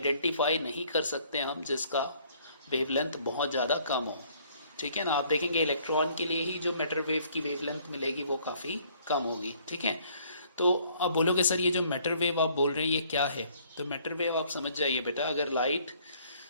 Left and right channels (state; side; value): inverted; both; correlation -0.61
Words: नहीं कर सकते हम जिसका वेवलेंथ बहुत ज़्यादा कम हो। ठीक है ना। आप देखेंगे इलेक्ट्रॉन के लिए ही जो मैटर वेव की वेवलेंथ मिलेगी वो काफ़ी कम होगी। ठीक है। तो अब बोलोगे सर ये जो मैटर वेव आप बोल रहे हैं ये क्या है? तो मैटर वेव आप समझ जाइए बेटा, अगर लाइट